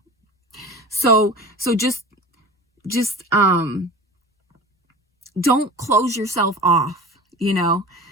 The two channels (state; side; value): normal; both; correlation 0.36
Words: So just don't close yourself off, you know,